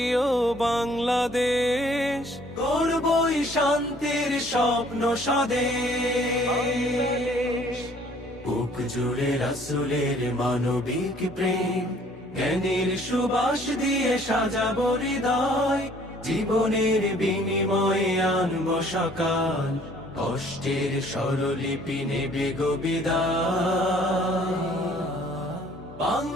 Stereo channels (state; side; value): normal; both; correlation 0.58